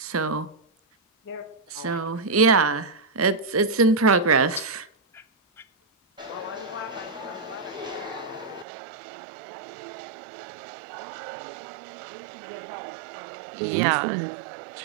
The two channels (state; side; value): drops out; left; at 8.7 s